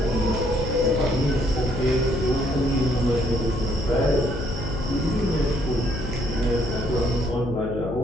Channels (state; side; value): noise; left; hum, 7 dB below the sound